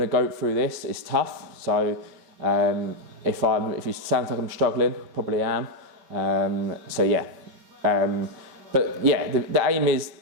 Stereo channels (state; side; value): late; left; 5.3 ms